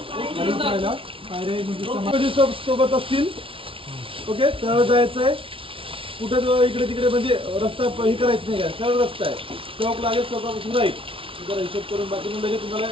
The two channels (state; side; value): late; left; 0.26 ms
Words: सोबत असतील. ओके सरळ जायचं आहे. कुठे इकडे तिकडे म्हणजे रस्ता हे करायचं नाही. काय सरळ रस्ता आहे. चौक लागेल, चौकापासून राहील. जरा हिशोब करून बाकी लगेच तुम्हाला